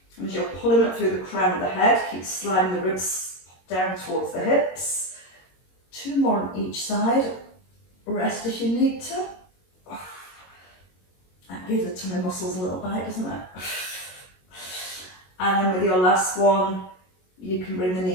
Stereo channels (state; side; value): late; right; 22 ms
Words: And as you're pulling up through the crown of the head, keep sliding the ribs down towards the hips. 2 more on each side. Rest if you need to. That gives the tummy muscles a little bite, doesn't it? And then with your last one, you can bring the